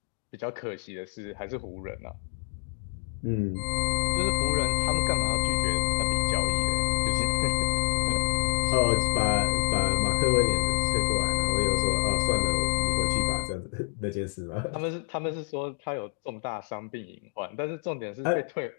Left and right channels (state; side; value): silent; right; digital silence